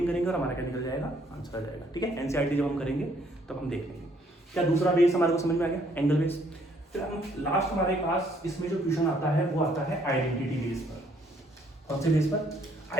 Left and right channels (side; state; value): both; normal; correlation 0.65